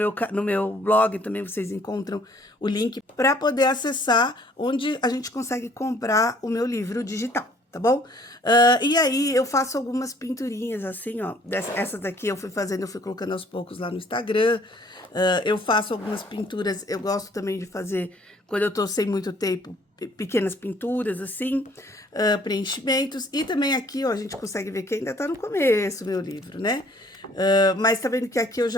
blog também vocês encontram o link para poder acessar onde a gente consegue comprar o meu livro digital, tá bom? E aí eu faço algumas pinturinhas assim, ó. Essas daqui eu fui fazendo, eu fui colocando aos poucos lá no Instagram. Eu faço algumas pinturas, eu gosto também de fazer, quando eu tô sem muito tempo, pequenas pinturas, assim, preenchimentos. E também aqui, ó, a gente consegue ver que ainda tá no começo, meu livro, né? Mas tá vendo que aqui eu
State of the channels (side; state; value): both; normal; correlation 0.59